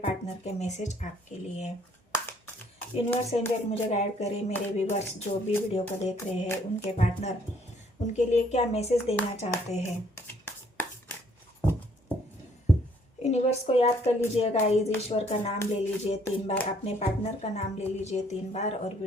के मैसेज आपके लिए। यूनिवर्स एंजल मुझे गाइड करे, मेरे व्यूअर्स जो भी वीडियो को देख रहे हैं उनके पार्टनर उनके लिए क्या मैसेज देना चाहते हैं। यूनिवर्स को याद कर लीजिए गाइस, ईश्वर का नाम ले लीजिए 3 बार, अपने पार्टनर का नाम ले लीजिए 3 बार और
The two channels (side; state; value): both; normal; correlation 0.64